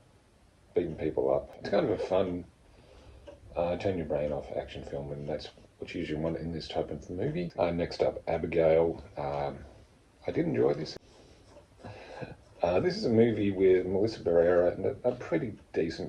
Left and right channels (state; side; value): identical; both; correlation 1.00